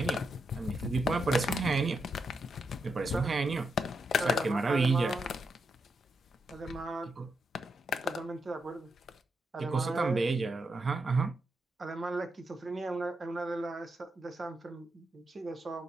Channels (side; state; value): both; normal; correlation 0.83